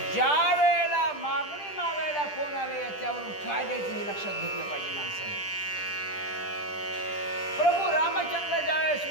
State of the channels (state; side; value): late; right; 10 ms